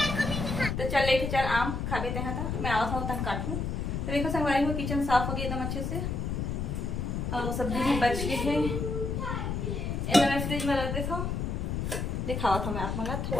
तो चल लेके चल आम खा लेते हैं। था मैं आवा था तन काटूँ। तो देखो संगवारी हो, किचन साफ हो गया एकदम अच्छे से और सब्जी भी बच गई है। एकदम मैं फ्रिज में रख देता हूँ। दिखावा था मैं आप मला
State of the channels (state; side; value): noise; left; rumble, 2 dB below the sound